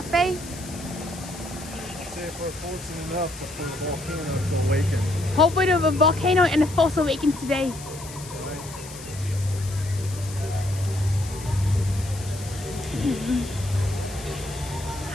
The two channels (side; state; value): left; noise; hiss, 15 dB below the sound